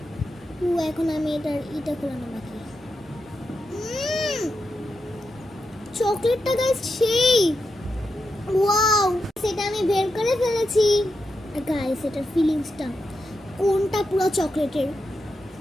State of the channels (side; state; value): both; normal; correlation 0.87